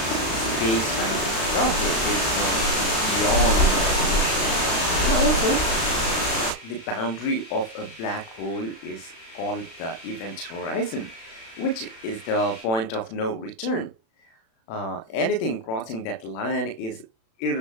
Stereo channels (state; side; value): late; right; 36 ms